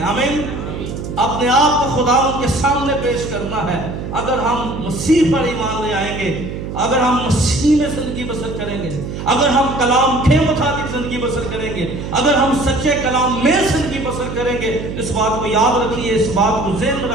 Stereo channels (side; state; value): right; noise; hum, 7 dB below the sound